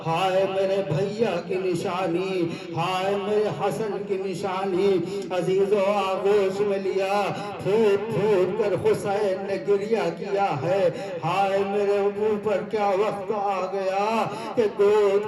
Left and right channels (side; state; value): both; identical; correlation 1.00